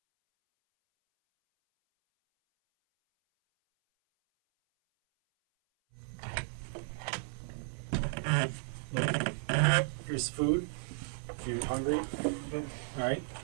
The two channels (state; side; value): silent; left; 55 dB below the other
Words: Here's food if you're hungry. Okay. All right.